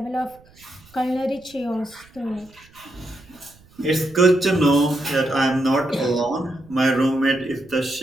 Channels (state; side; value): noise; right; rumble, 27 dB below the sound